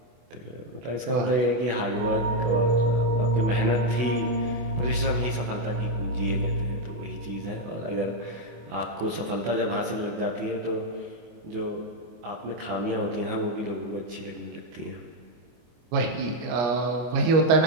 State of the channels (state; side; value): late; left; 24 ms